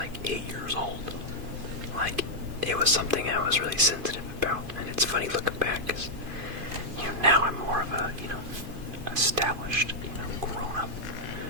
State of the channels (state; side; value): late; left; 2.5 ms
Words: 8 years old. Like, it was something I was really sensitive about, and it's funny looking back, because, now I'm more of a, established, grown-up